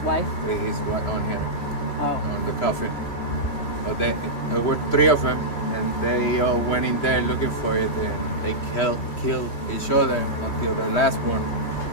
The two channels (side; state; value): right; late; 3.2 ms